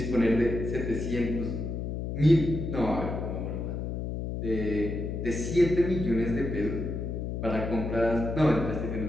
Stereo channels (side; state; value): left; noise; hum, 4 dB below the sound